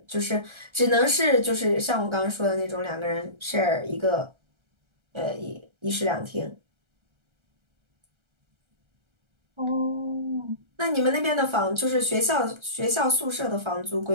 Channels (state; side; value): late; left; 1.3 ms